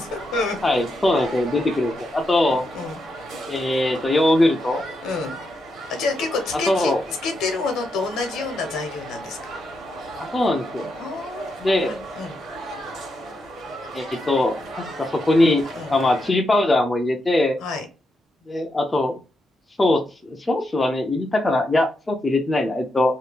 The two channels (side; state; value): both; normal; correlation 0.84